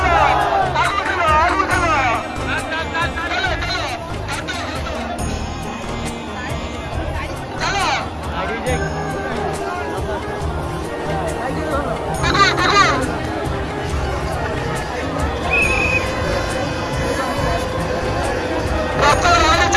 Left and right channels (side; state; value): both; identical; correlation 1.00